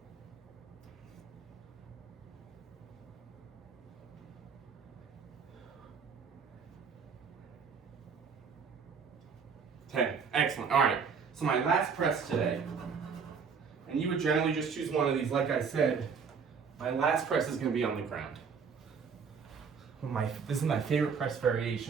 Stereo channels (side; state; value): left; quieter; 6.0 dB